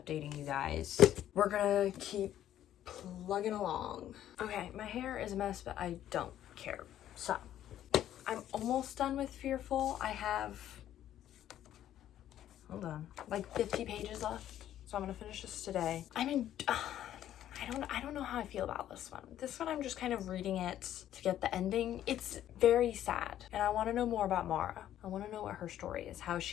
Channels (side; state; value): right; quieter; 11.7 dB